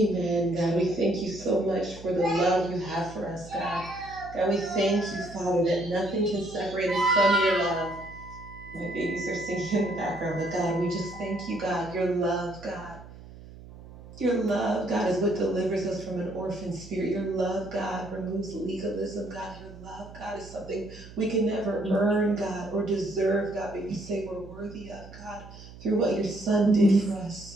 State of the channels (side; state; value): right; noise; hum, 17 dB below the sound